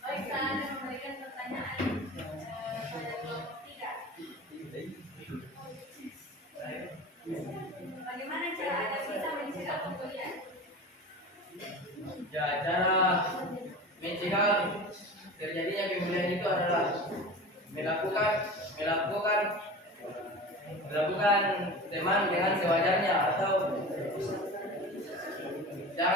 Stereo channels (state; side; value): normal; both; correlation 0.33